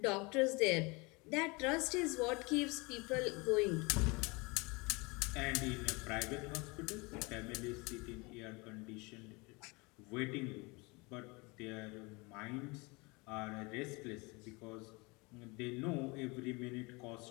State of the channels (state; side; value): quieter; right; 26.9 dB